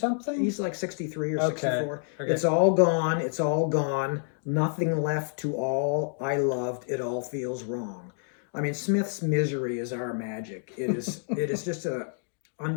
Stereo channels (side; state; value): right; silent; 59 dB below the other